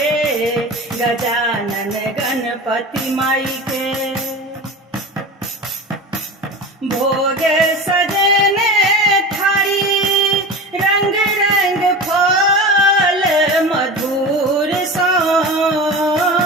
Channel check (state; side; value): normal; both; correlation 0.30